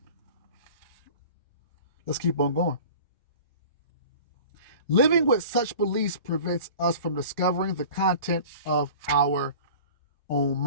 Let's keep on going. Living with such beliefs prevents us from discovering the content of our own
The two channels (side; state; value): both; inverted; correlation -0.41